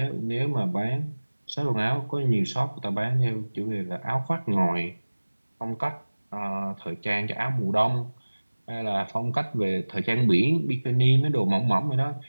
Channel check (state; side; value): inverted; both; correlation -1.00